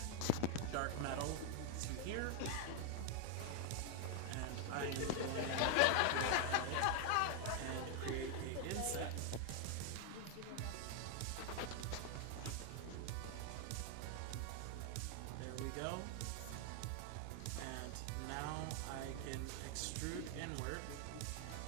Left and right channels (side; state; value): both; different; correlation 0.00